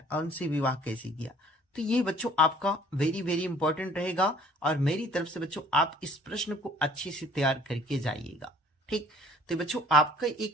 और उनसे विवाह कैसे किया। तो ये बच्चों आपका वेरी वेरी इंपॉर्टेंट रहेगा, और मेरी तरफ से बच्चों आप इस प्रश्न को अच्छे से तैयार करके जाइएगा, ठीक। तो बच्चों आपका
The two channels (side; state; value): both; normal; correlation 0.54